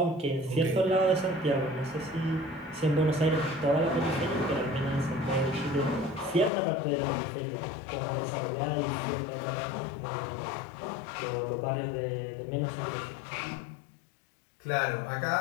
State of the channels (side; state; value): right; drops out; at 6.5 s